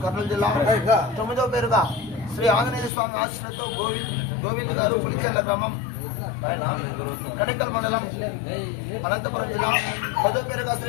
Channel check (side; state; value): right; drops out; at 2.9 s